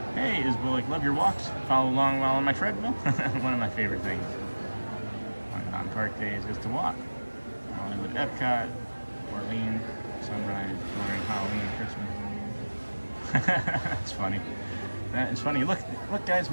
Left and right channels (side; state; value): both; inverted; correlation -1.00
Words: Hey, Isbullick, love your walks. Follow along while on my treadmill. One of my favorite things on park days is to walk. Hollywood, Epcot, Orleans, Sunrise, during Halloween, Christmas. That's funny. That is funny. Look, guys,